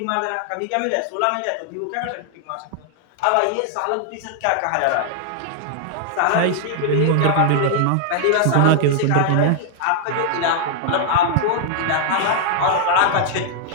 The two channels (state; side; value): different; both; correlation 0.00